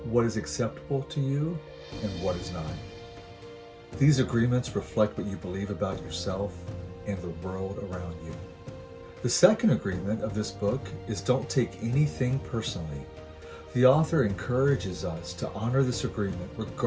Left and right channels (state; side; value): identical; both; correlation 1.00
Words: what is acceptable to you, and what is not. These agreements reflect what you believe about yourself and the world around you. The second agreement of this book is don't take anything personally. The author encourages us to honor this agreement